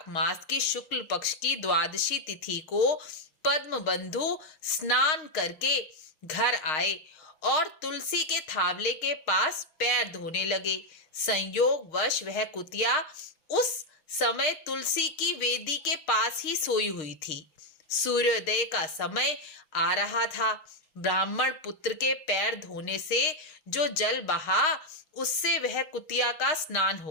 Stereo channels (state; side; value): late; right; 6.5 ms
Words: मास की शुक्ल पक्ष की द्वादशी तिथि को पद्मबंधु स्नान करके घर आए और तुलसी के थावले के पास पैर धोने लगे। संयोगवश वह कुतिया उस समय तुलसी की वेदी के पास ही सोई हुई थी। सूर्योदय का समय आ रहा था। ब्राह्मण पुत्र के पैर धोने से जो जल बहा, उससे वह कुतिया का स्नान